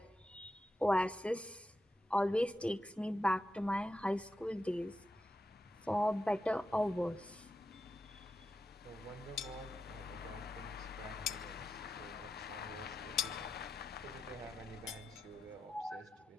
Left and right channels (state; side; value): normal; both; correlation 0.88